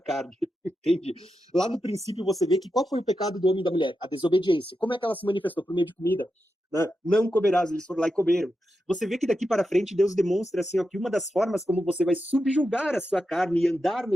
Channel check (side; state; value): both; normal; correlation 0.88